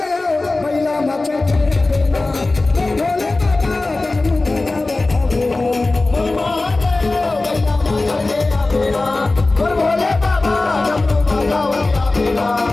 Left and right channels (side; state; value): right; quieter; 3.2 dB